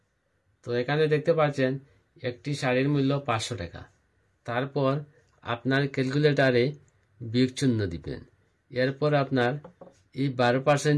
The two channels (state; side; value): identical; both; correlation 1.00